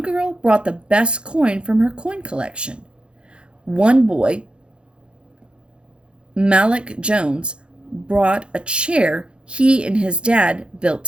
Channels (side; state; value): left; late; 0.056 ms